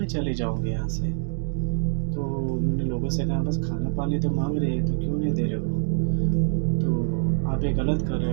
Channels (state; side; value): silent; left; digital silence